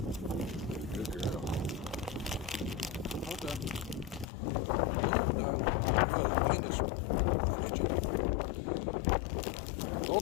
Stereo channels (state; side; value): drops out; right; at 4.2 s